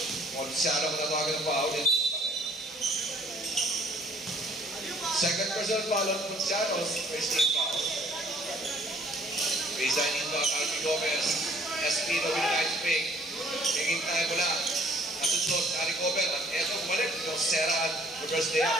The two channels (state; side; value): normal; both; correlation 0.59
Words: Ponciano patawagan ng foul. Second personal foul on Ponciano's first team foul. Baseline inbound, Albi Gomez. Espino with a nice pick. Hingin tayo mula. Nasusunod, na-recover. At eto, bumalik. Josera, reverse layup.